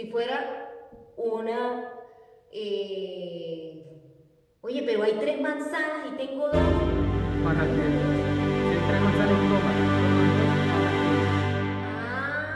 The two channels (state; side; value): identical; both; correlation 1.00